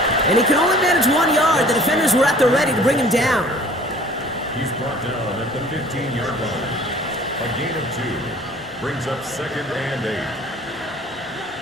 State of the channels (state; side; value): normal; both; correlation 0.50